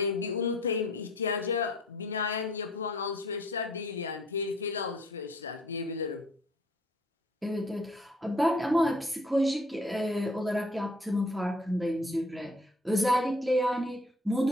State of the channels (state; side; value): normal; both; correlation 0.57